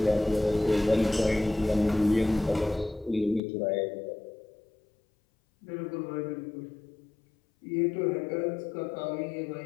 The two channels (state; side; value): drops out; right; at 3.4 s